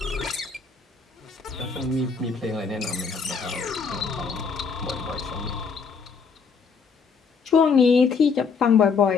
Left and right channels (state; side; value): quieter; right; 5.4 dB